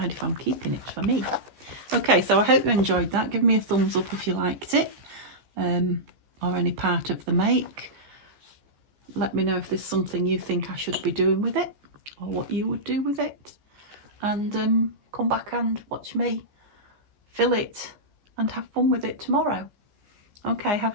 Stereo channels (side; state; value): left; late; 15 ms